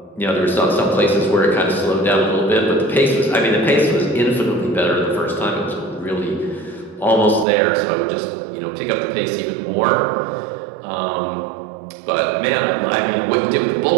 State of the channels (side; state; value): left; drops out; at 7.5 s